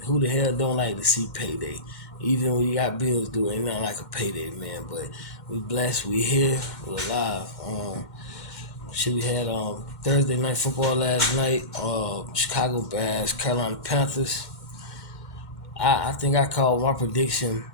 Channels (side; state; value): right; late; 2.1 ms